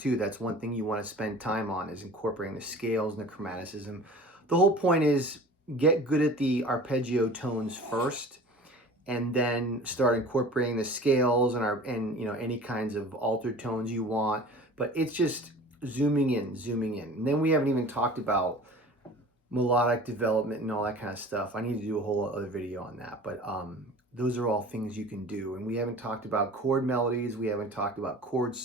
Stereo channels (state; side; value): normal; both; correlation 0.42